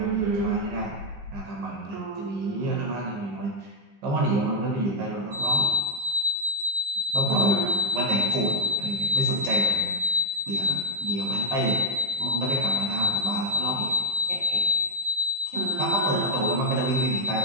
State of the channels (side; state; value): left; late; 15 ms